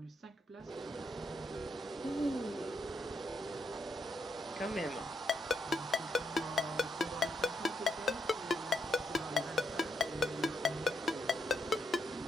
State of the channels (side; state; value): both; normal; correlation 0.77